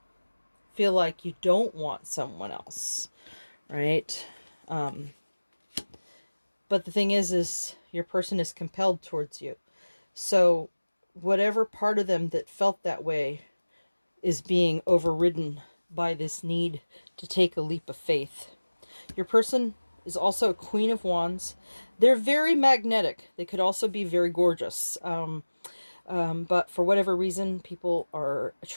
feel like you don't want someone else, right? But the thing is your person is compelled towards you. So whatever part of them that felt that way is being overridden by this need to take a leap of faith. Your person is also a Queen of Wands. They're very magnetic. They could also be very gorgeous. But for whatever reason, people are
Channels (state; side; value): inverted; both; correlation -1.00